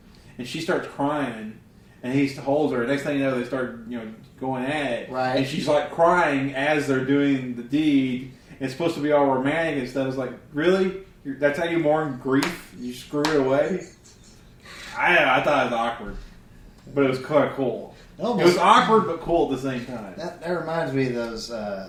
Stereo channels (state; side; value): identical; both; correlation 1.00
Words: and she starts crying, and he holds her. Next thing you know, they start going at it, right? And she's like crying as they're doing the deed. It's supposed to be all romantic and stuff. It's like, really? That's how you mourn grief? You screw it away? I thought it was awkward, but it was kind of cool. It was awkward but cool at the same time. That reminds me of those